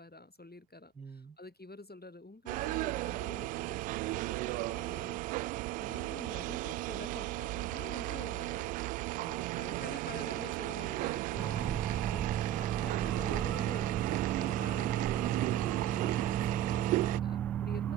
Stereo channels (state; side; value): quieter; left; 12.1 dB